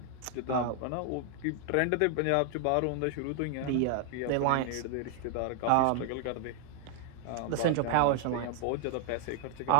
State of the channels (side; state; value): both; different; correlation 0.00